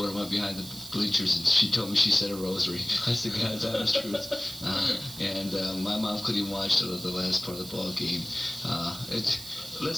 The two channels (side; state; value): right; noise; hiss, 13 dB below the sound